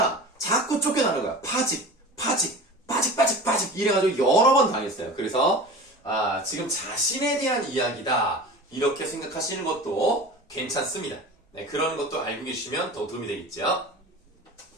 자꾸 쫓겨나는 거야. 파직 이래가지고 여러 번 당했어요. 그래서 지금 자신에 대한 이야기다 이렇게 생각하시는 것도 괜찮습니다. 네, 그런 것도 알고 계시면 더 도움이 되겠죠.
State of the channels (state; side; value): normal; both; correlation 0.36